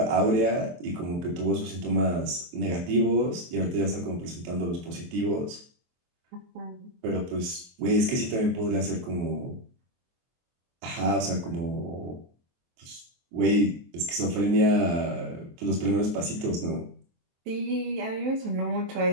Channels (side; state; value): left; late; 23 ms